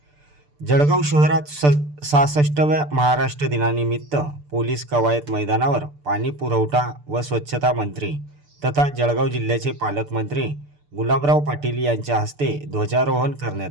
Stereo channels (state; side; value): late; left; 6.8 ms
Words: जळगाव शहरात 66व्या महाराष्ट्र दिनानिमित्त पोलीस कवायत मैदानावर पाणी पुरवठा व स्वच्छता मंत्री तथा जळगाव जिल्ह्याचे पालकमंत्री गुलाबराव पाटील यांच्या हस्ते ध्वजारोहण